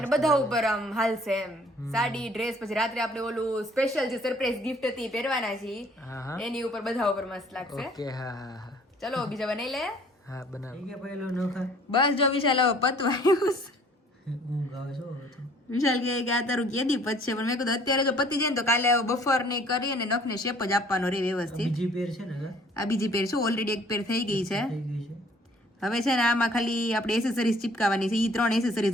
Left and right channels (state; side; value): normal; both; correlation 0.56